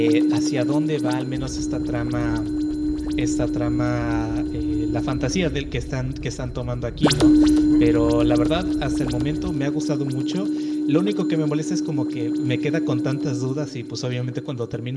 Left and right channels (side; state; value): both; identical; correlation 1.00